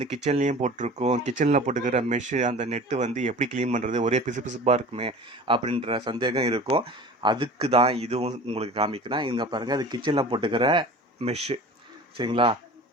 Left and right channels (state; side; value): normal; both; correlation 0.39